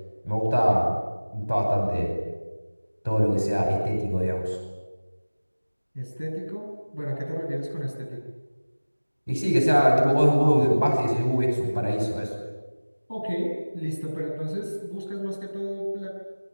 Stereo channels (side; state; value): both; inverted; correlation -1.00